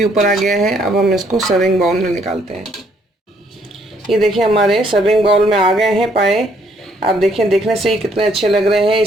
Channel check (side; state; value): both; normal; correlation 0.67